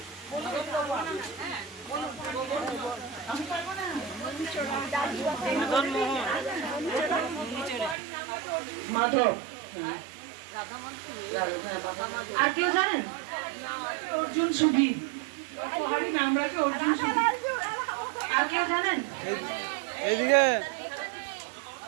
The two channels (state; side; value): drops out; left; at 8.0 s